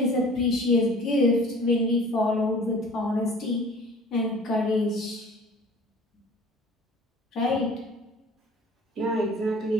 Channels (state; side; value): normal; both; correlation 0.46